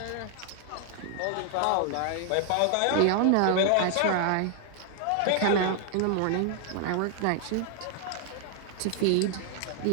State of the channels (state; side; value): different; both; correlation 0.00